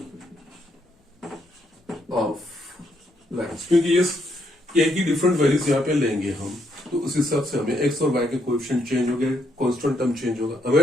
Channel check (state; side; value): normal; both; correlation 0.75